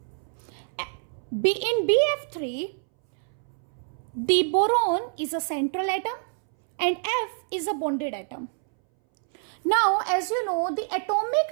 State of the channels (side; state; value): left; silent; 61 dB below the other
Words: In BF3, the boron is a central atom and F is a bonded atom. Now, as you know, the